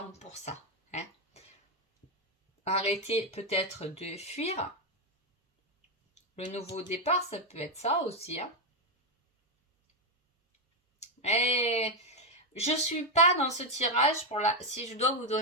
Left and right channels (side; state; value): both; normal; correlation 0.04